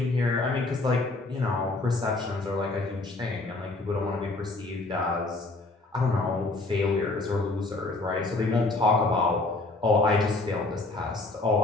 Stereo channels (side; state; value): right; quieter; 3.2 dB